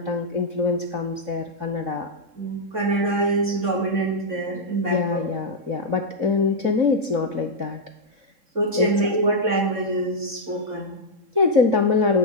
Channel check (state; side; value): late; left; 3.7 ms